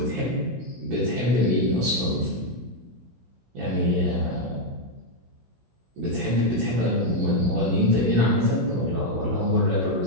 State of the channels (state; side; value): late; left; 16 ms